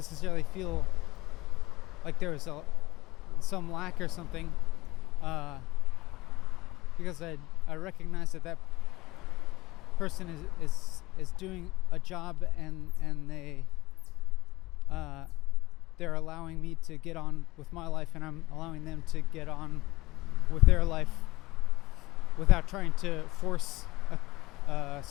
feel like there was some lack or something, because I recognize that person is doing a job, and they're allowing me to get on with my life, and I'm allowing them to get on with their life without trying to force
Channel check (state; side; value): quieter; right; 19.6 dB